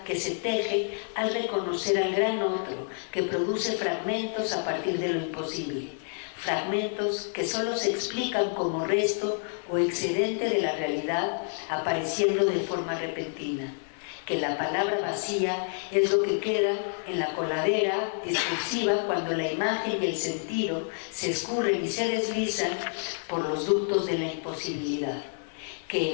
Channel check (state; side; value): silent; right; 59 dB below the other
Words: que se teje al reconocer al gran otro, que produce fragmentos a partir de lo imposible. Fragmentos que solo se explican como resto o excedente de la realidad apareciendo de forma repentina. Que la palabra vacía es lo que queda en la coladera discursiva cuando la imagen y el sentido se escurren y se deslizan por los ductos de la imposibilidad. Que